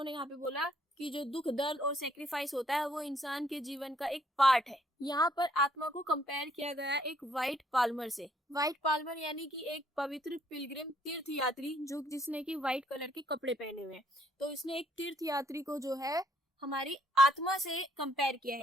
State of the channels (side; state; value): both; normal; correlation 0.67